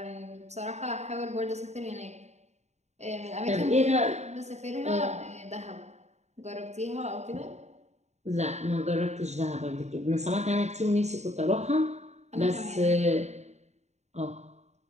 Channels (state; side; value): late; left; 0.32 ms